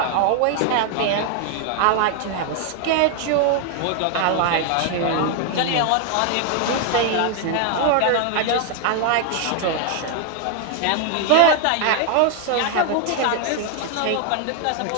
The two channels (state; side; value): different; both; correlation 0.00